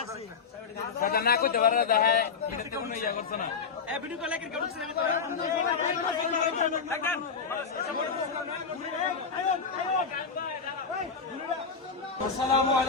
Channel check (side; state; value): right; quieter; 5.6 dB